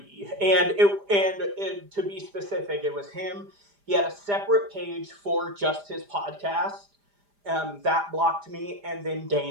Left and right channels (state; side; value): late; left; 5.0 ms